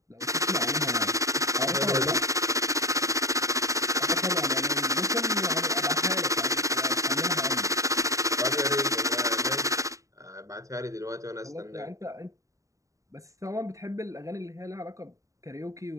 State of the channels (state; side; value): late; left; 0.16 ms